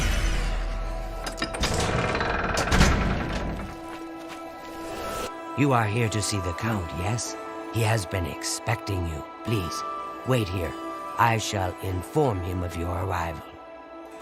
You are here to see the Count, yes? He has been expecting you. Please, wait here. I shall inform him of your arrival.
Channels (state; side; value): identical; both; correlation 1.00